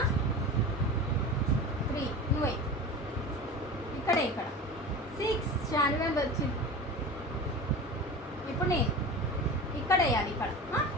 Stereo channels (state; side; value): normal; both; correlation 0.32